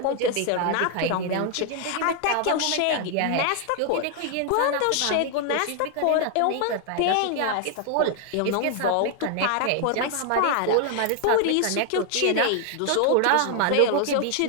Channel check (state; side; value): different; both; correlation 0.00